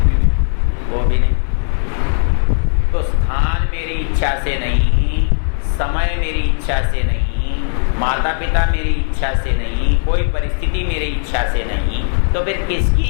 वो भी नहीं। तो स्थान मेरी इच्छा से नहीं, समय मेरी इच्छा से नहीं, माता पिता मेरी इच्छा से नहीं, कोई परिस्थिति मेरी इच्छा से नहीं, तो फिर किसकी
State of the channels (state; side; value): silent; right; digital silence